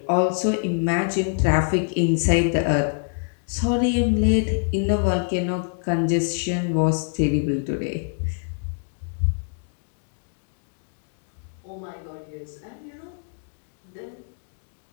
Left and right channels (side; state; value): right; silent; 62 dB below the other